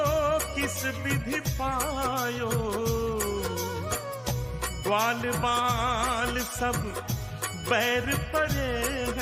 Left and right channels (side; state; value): both; identical; correlation 1.00